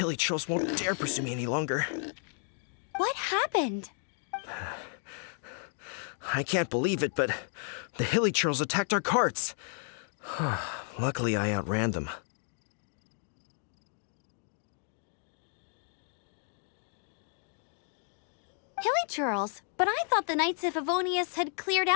trolls won't dare pursue me any longer. What happened? I can't believe it, but the hilly trolls attacked our carts. Luckily, I outran them. Hilly churls? But I thought the Knights of Favonius had cleared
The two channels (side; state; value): right; silent; 56 dB below the other